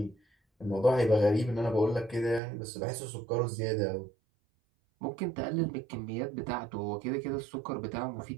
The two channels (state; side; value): drops out; left; at 2.4 s